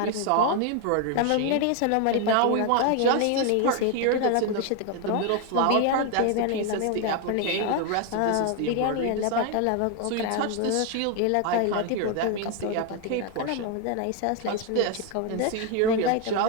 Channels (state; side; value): different; both; correlation 0.01